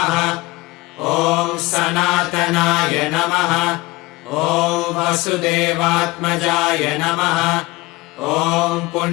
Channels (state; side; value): quieter; right; 21.8 dB